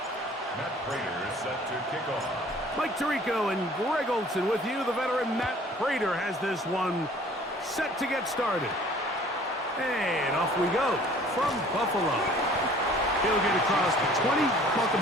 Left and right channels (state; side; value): normal; both; correlation 0.52